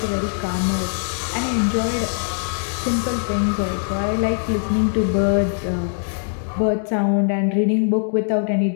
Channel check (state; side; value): silent; right; digital silence